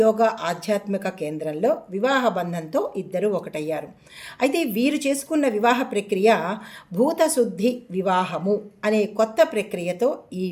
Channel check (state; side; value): identical; both; correlation 1.00